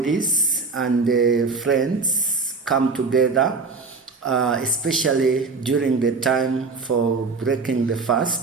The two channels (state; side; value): quieter; left; 4.4 dB